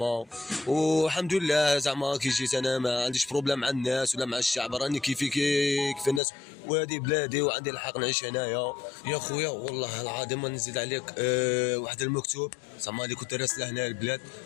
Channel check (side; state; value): right; drops out; at 6.2 s